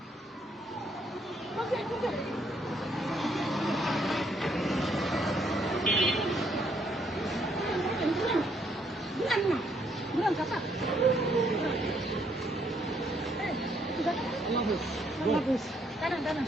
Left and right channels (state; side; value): normal; both; correlation 0.71